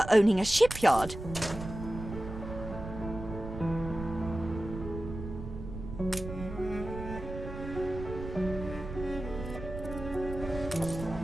owning a shipyard.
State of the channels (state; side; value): noise; right; rumble, 9 dB below the sound